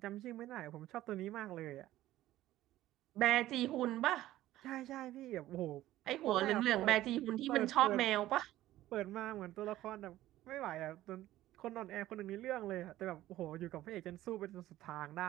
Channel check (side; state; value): left; quieter; 14.9 dB